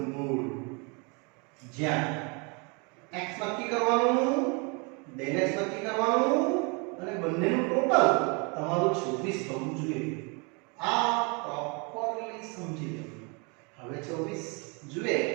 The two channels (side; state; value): left; quieter; 31.9 dB